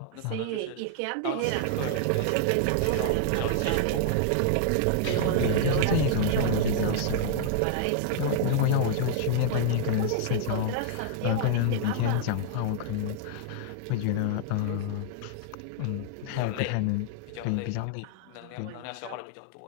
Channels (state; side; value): different; both; correlation -0.01